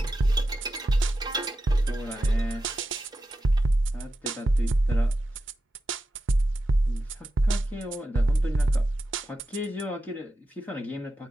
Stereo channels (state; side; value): normal; both; correlation 0.90